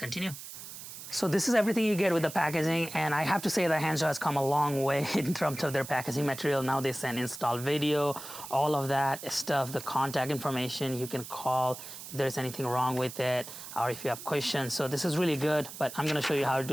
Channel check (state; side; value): noise; right; hiss, 12 dB below the sound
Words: So this is everything you get with the packaging, and I have to say that Henshu has come a long way in terms of their packaging material. Now they send install video, all of that stuff, the contact information. You can call if there's anything wrong with it, or if you have questions. So this is really good, but I'm going to show you how to